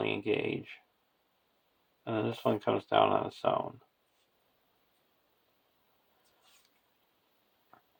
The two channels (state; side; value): identical; both; correlation 1.00